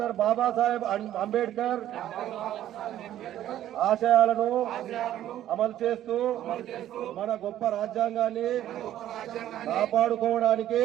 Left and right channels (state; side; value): quieter; left; 12.3 dB